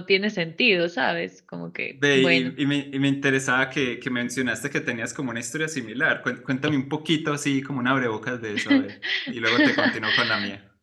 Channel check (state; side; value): identical; both; correlation 1.00